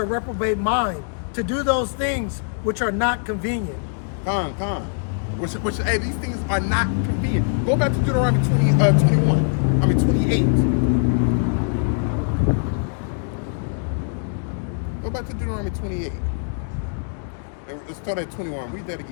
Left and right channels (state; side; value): silent; right; digital silence